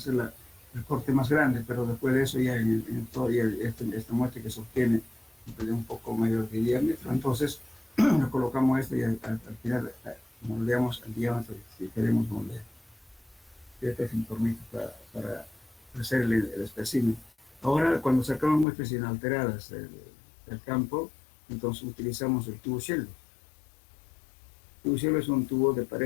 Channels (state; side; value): drops out; right; at 18.7 s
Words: el corte más grande, pero después de eso ya esta muestra que se obtiene de un poco mayor de diámetro, entonces lo colocamos esto y al final moldeamos el diámetro si queremos moldear. Este es un tornillo para hacer el espécimen. Ahora, cuando sacamos muestras inalteradas del campo, entonces utilizamos el tubo Shell. El tubo Shell es un tubo de